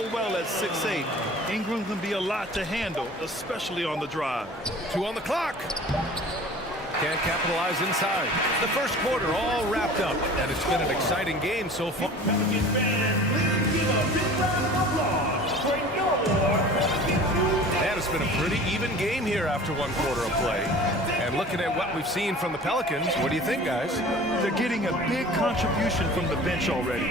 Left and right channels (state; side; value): normal; both; correlation 0.43